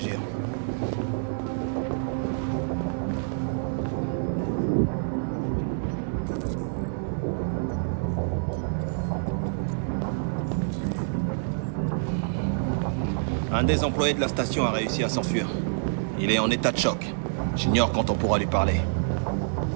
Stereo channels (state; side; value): silent; left; digital silence